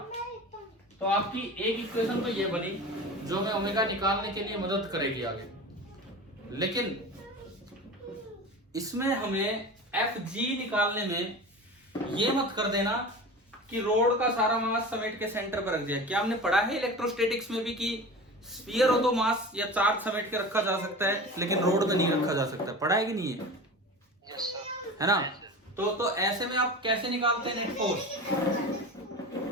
तो आपकी एक इक्वेशन तो ये बनी जो हमें ओमेगा निकालने के लिए मदद करेगी आगे, लेकिन इसमें हमें Fg निकालने में ये मत कर देना कि रोड का सारा मास समेट के सेंटर पर रख दिया। क्या हमने पढ़ा है इलेक्ट्रोस्टैटिक्स में भी कि स्फीयर हो तो मास या चार्ज समेट के रखा जा सकता है, लेकिन रोड में नहीं रखा जा सकता? पढ़ा है कि नहीं है? है ना? तो ऐसे में आप कैसे निकालते हैं नेट फोर्स?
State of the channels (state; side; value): normal; both; correlation 0.33